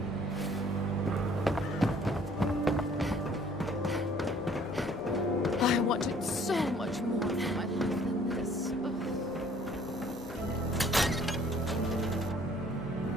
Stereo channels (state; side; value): normal; both; correlation 0.57